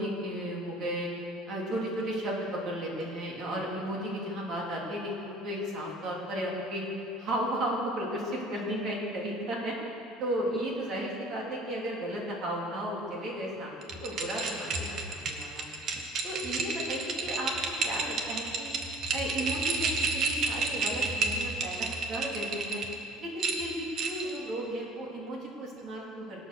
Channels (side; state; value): both; normal; correlation 0.48